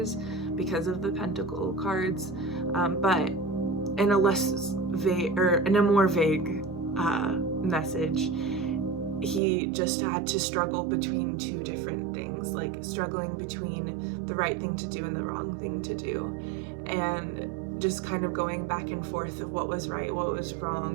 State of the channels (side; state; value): left; drops out; at 9.4 s